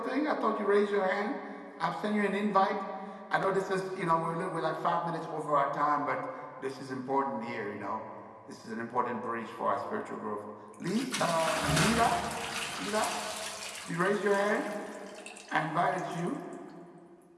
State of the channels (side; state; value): both; identical; correlation 1.00